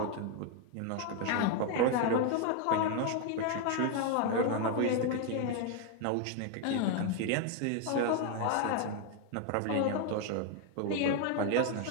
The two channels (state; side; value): different; both; correlation 0.01